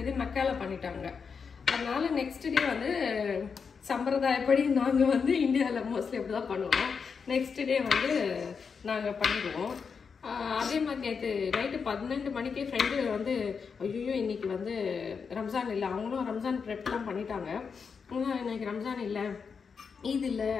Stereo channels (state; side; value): quieter; right; 5.8 dB